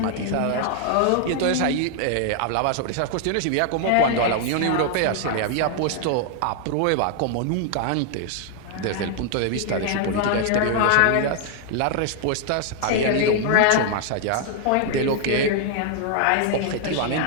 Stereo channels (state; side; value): different; both; correlation 0.00